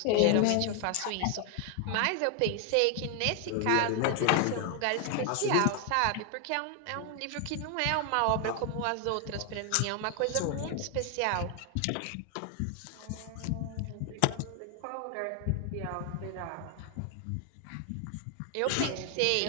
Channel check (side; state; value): both; different; correlation 0.00